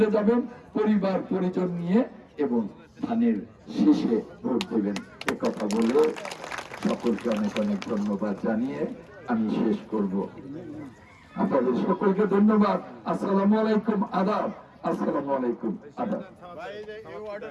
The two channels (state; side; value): identical; both; correlation 1.00